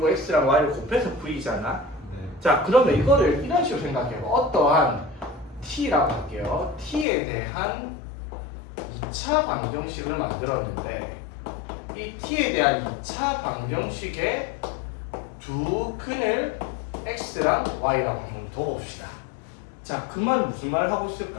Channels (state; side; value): drops out; right; at 7.1 s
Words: X랑 Y를 곱해서 V잖아. 자, 그러면 이거를 이런 식으로 생각해요. 어떠한 T라고 할게요. T에 대한 2차 방정식을 만들었는데 이 T에 대한 2차 방정식의 두 근을 X랑 Y라고 한번 둬봅시다. 자, 그 말은 무슨 말을 하고